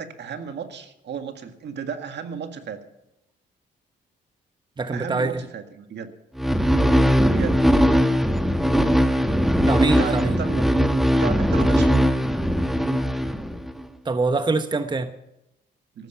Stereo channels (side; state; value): both; normal; correlation 0.90